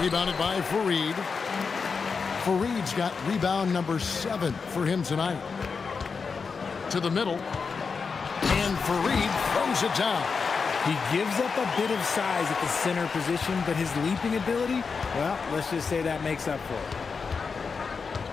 Rebounded by Fareed. Fareed's got rebound number 7 for him tonight. To the middle. And Fareed throws it down. He gives up a bit of size at the center position, but his leaping ability, well, let's just say that makes up for it.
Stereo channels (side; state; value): right; quieter; 5.2 dB